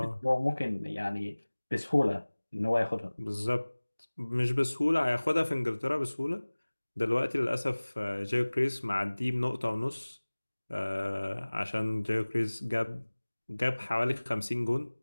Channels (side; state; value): both; inverted; correlation -1.00